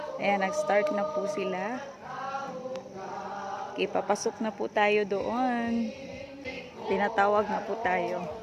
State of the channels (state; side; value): identical; both; correlation 1.00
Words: Ayan. Nag-start na po sila. Okay, papasok na po tayo doon. Tinatawag na po tayo.